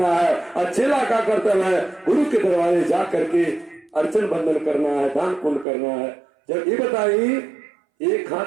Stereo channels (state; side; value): drops out; left; at 5.7 s